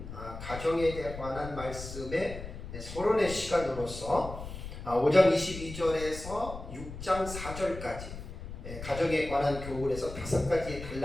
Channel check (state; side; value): noise; left; rumble, 10 dB below the sound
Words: 가정에 관한 말씀의 서론의 시간으로서 5장 22절에서 6장 4절까지 가정에 관한 교훈에서 5가지